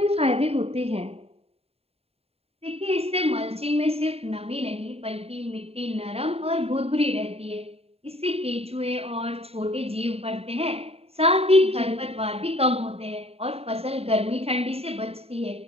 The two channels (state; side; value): late; left; 0.29 ms